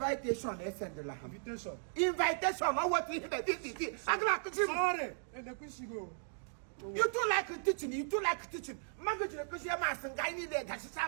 they send the lamb. Invitation. Invitation, I want to hear this. I'm glad to see. Sorry. And the question go. You too like teaching, you too like teaching. Mango to the Christian mass and guy need that. She's a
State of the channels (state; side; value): silent; left; digital silence